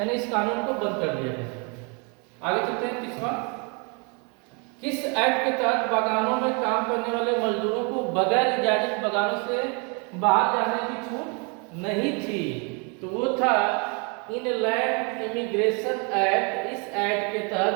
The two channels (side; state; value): left; quieter; 34.1 dB